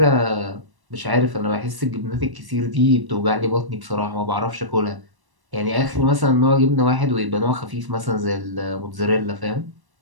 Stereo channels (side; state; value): left; late; 1.1 ms